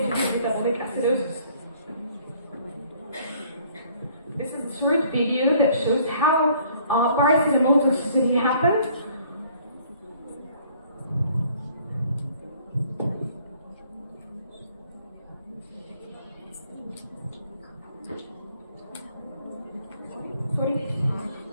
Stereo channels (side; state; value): both; inverted; correlation -0.59